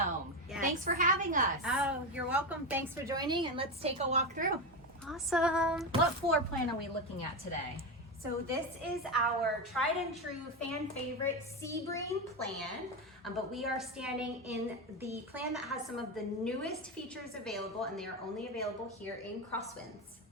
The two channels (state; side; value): normal; both; correlation 0.15